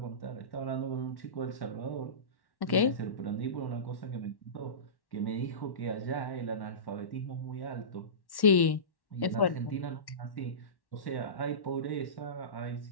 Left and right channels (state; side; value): late; right; 1.1 ms